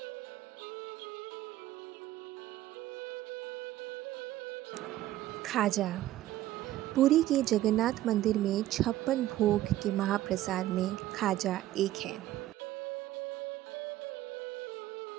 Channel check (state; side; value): quieter; left; 14.5 dB